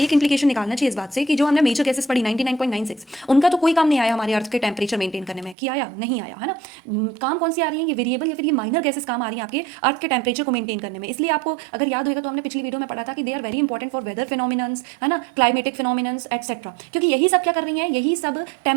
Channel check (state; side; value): drops out; left; at 5.6 s